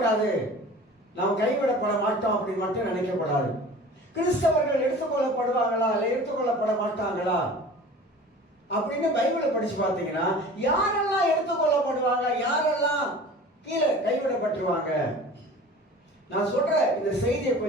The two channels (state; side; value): normal; both; correlation 0.41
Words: நாம் கைவிடப்பட மாட்டோம் அப்படின்னு மட்டும் நினைக்கப்படாது. கிறிஸ்தவர்கள் எடுத்துக்கொள்ளப்படுவாங்களா இல்லை எடுத்துக்கொள்ளப்பட மாட்டாங்களா அப்படின்னு பைபிளை படிச்சு பார்த்தீங்கன்னா யாரெல்லாம் எடுத்துக்கொள்ளப்படுவாங்க, யாரெல்லாம் கீழே கைவிடப்பட்டுருவாங்க. நான் சொல்ற இந்த செய்தியை